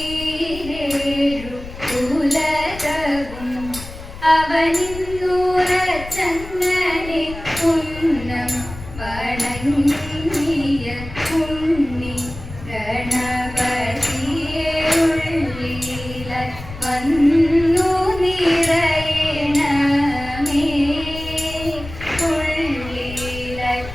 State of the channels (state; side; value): noise; left; rumble, 13 dB below the sound